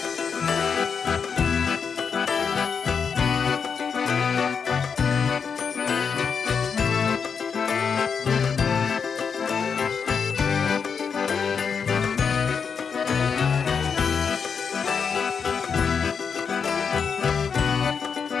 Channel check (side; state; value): right; quieter; 6.2 dB